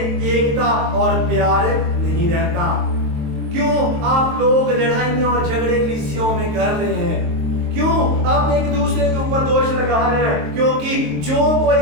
और प्यार नहीं रहता, क्यों आप लोग लड़ाइयां और झगड़े कलीसियाओं में कर रहे हैं, क्यों आप एक दूसरे के ऊपर दोष लगा रहे हैं। क्योंकि जो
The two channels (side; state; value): left; late; 22 ms